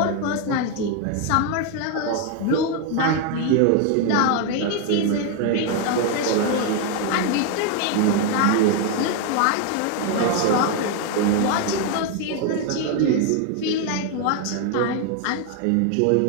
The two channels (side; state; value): both; different; correlation 0.01